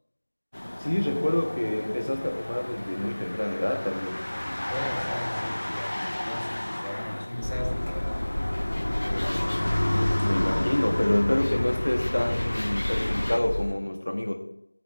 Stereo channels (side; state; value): both; inverted; correlation -1.00